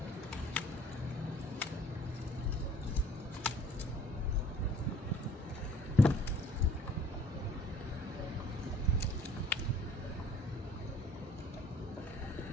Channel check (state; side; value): normal; both; correlation 0.55